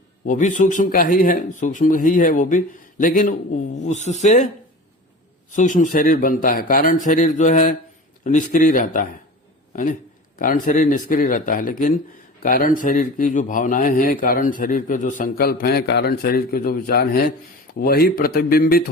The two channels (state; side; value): normal; both; correlation 0.35